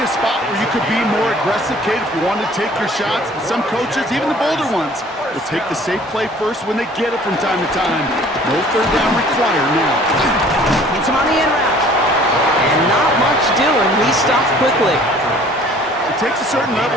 spot where you could be more aggressive, Kate, if you wanted to take your shots. But some coaches, even the bolder ones, will take the safe play first when they get it from time to time. No third down required now. Hits him on the in route. And not much doing. He stopped quickly. It takes a certain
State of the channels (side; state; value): both; normal; correlation 0.52